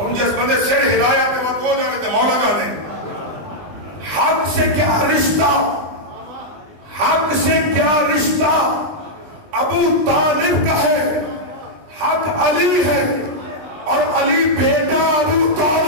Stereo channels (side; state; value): left; late; 20 ms